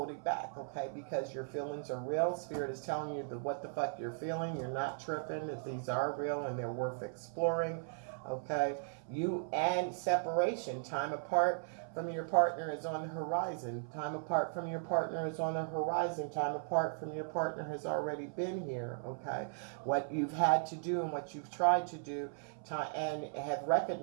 back, okay? Because your feelings are real. Spirit is telling you what the fuck you're feeling. You're not tripping. If these are real and they're worth exploring, okay? And separation. Time apart from your partner is on the horizon. Time apart from your partner is on the horizon. Time apart from your partner has already been here, okay? What you've had to do and what you've tried to do, and have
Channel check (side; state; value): left; silent; 53 dB below the other